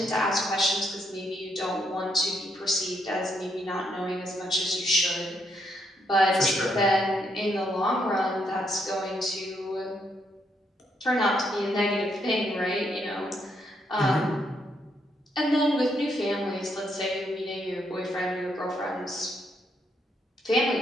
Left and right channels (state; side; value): normal; both; correlation 0.76